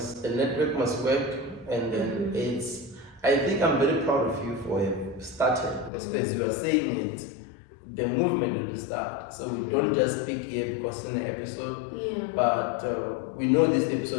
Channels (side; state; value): right; drops out; at 5.9 s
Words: The network must work, and then I think I'm very proud of you for starting, because as you are saying it, the movement will start. So we don't just speak here because in the episode, but we know this